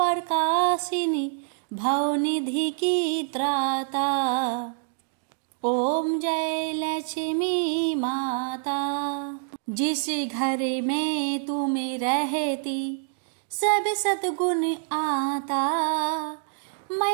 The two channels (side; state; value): left; silent; digital silence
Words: भवनिधि की त्राता। ओम जय लक्ष्मी माता, जिस घर में तुम रहती सब सद्गुण आता,